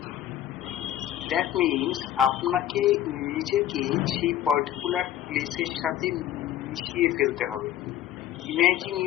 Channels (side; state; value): right; quieter; 11.9 dB